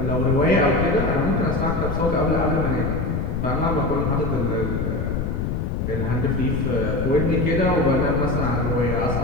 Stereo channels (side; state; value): left; noise; rumble, 1 dB below the sound